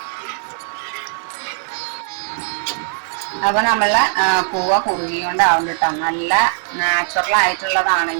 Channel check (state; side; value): silent; left; 66 dB below the other